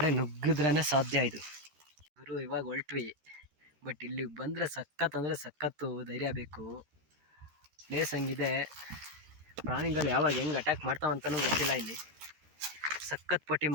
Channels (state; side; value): late; left; 13 ms